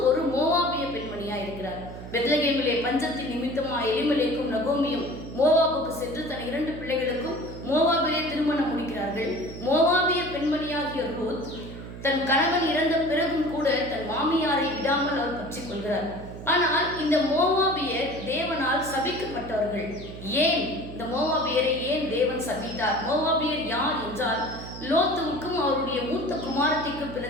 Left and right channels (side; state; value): right; noise; hum, 12 dB below the sound